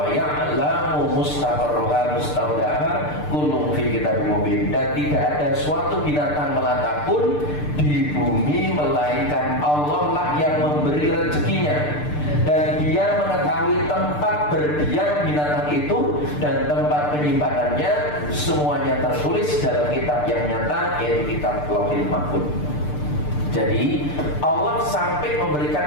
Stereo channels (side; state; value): right; late; 6.7 ms